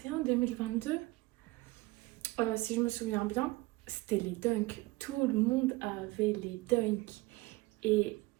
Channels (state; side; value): quieter; left; 21.4 dB